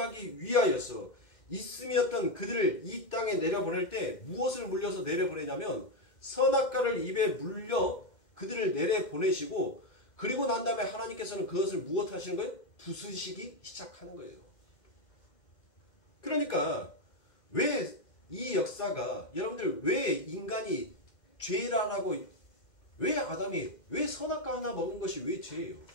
위하여서 있음이었던 그들을 이 땅에 내려보낼 때 무엇을 물려서 내려보내냐면 선악과를 입에 물려 그들을 내려보내시고, 그리고 난 다음에 하나님께서는 그것을 무엇 하시는 거예요? 부수시기 시작하는 거예요. 그러니까 왜 이 역사가, 여러분들 왜 인간이 죄라라고, 왜 아담이, 왜 선악과 하나 먹은 것이 왜 죄예요?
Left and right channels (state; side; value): late; right; 2.1 ms